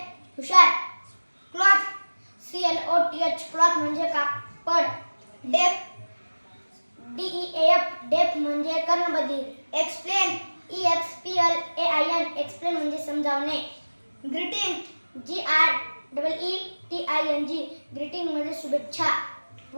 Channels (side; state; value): both; inverted; correlation -1.00